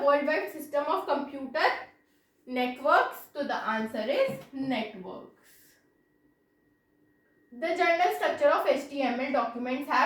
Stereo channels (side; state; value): both; identical; correlation 1.00